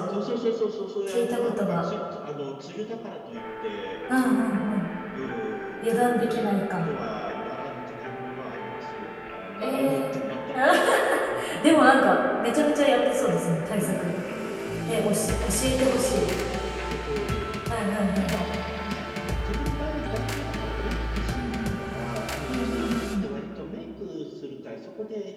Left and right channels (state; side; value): identical; both; correlation 1.00